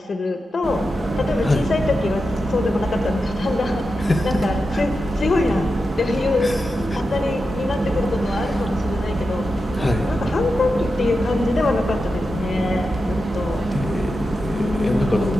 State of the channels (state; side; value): normal; both; correlation 0.90